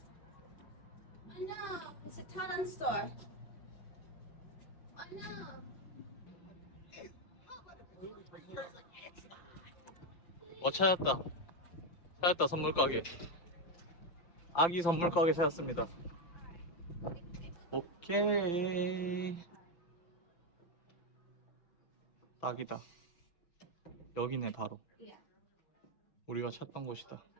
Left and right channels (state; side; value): late; right; 5.8 ms